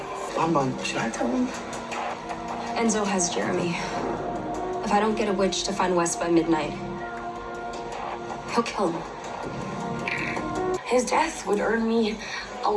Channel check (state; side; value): identical; both; correlation 1.00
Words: Should I tell him? Enzo has Jeremy. If I don't get a witch to find Wes by midnight, he'll kill him. His death would earn me a